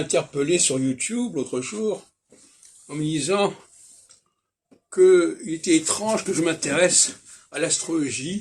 sur YouTube l'autre jour en me disant qu'il était étrange que je m'intéresse à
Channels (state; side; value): identical; both; correlation 1.00